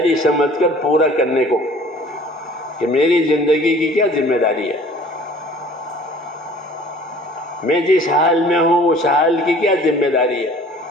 سمجھ کر پورا کرنے کو کہ میری زندگی کی کیا ذمہ داری ہے، میں جس حال میں ہوں اس حال کی کیا ذمہ داری ہے،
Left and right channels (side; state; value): both; normal; correlation 0.50